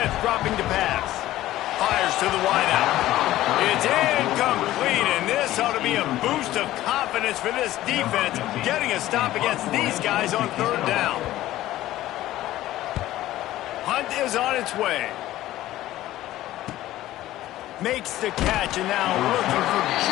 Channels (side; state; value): right; quieter; 15.0 dB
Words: dropping to pass. Fires to the wideout. It's incomplete, and this ought to be a boost of confidence for this defense, getting a stop against these guys on third down. Hunt is on its way. Makes the catch, and now looking for